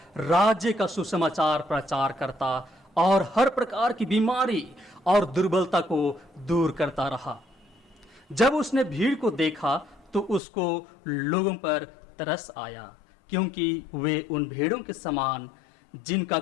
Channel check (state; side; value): drops out; right; at 10.4 s